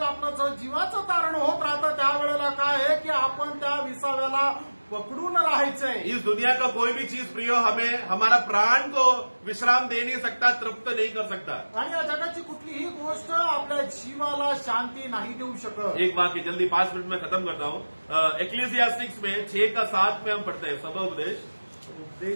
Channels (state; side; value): inverted; both; correlation -1.00